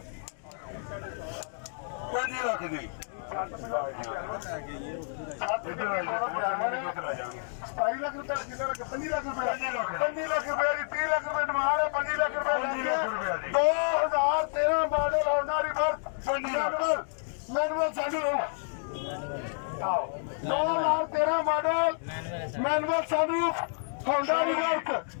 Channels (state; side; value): silent; right; digital silence